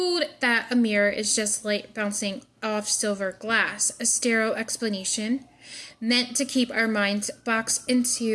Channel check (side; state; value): both; identical; correlation 1.00